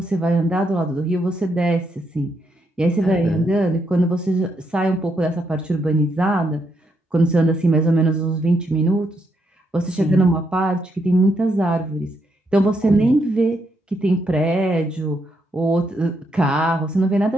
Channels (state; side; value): normal; both; correlation 0.78